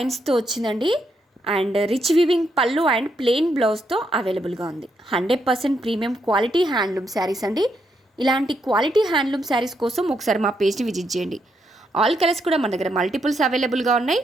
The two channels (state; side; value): normal; both; correlation 0.78